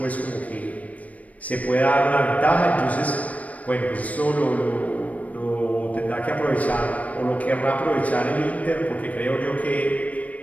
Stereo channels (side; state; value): right; late; 0.069 ms